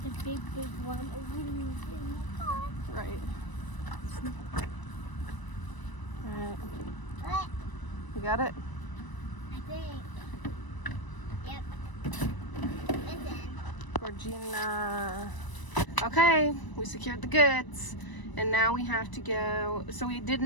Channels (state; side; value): late; right; 1.0 ms